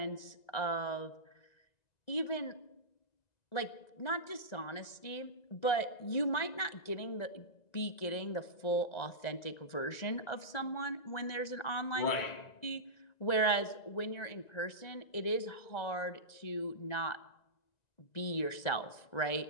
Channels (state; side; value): late; right; 1.9 ms